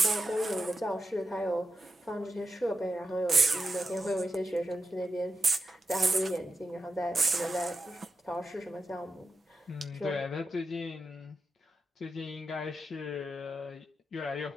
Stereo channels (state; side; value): normal; both; correlation 0.87